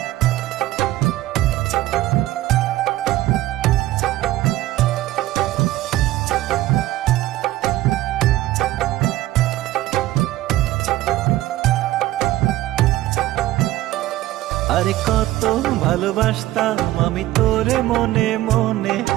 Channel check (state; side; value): quieter; left; 15.8 dB